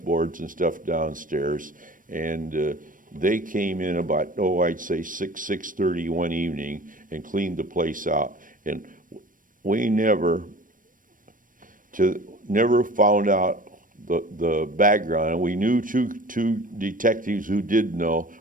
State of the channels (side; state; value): left; late; 0.39 ms